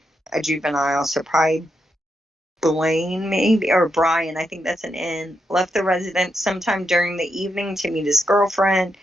a juvenile, so probably Blaine maybe, or Brian, I think that's an N, left the residence sometime during the evening to meet his girlfriend.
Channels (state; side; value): normal; both; correlation 0.83